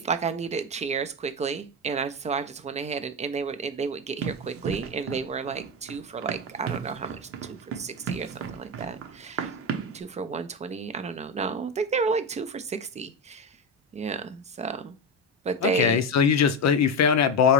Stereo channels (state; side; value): normal; both; correlation 0.14